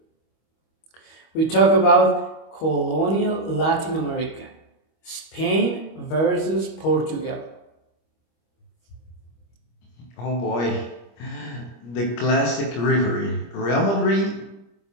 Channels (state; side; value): late; right; 25 ms